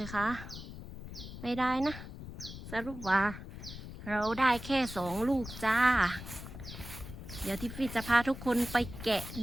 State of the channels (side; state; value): left; noise; rumble, 11 dB below the sound